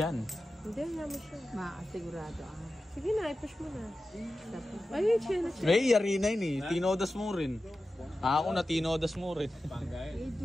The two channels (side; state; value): both; normal; correlation 0.93